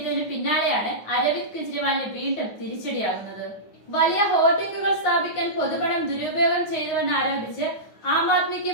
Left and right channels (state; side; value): late; right; 9.5 ms